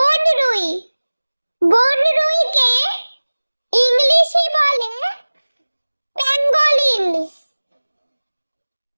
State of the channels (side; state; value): both; inverted; correlation -1.00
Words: বনরুইকে ইংলিশে বলে প্যাঙ্গোলিন।